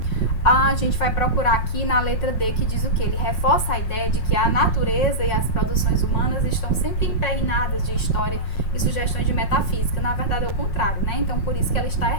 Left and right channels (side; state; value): right; late; 5.5 ms